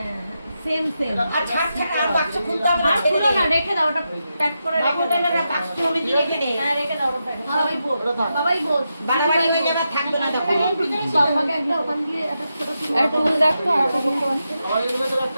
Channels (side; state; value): both; inverted; correlation -0.87